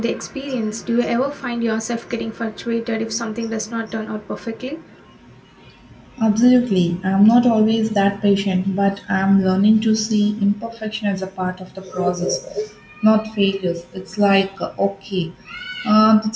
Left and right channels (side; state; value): both; identical; correlation 1.00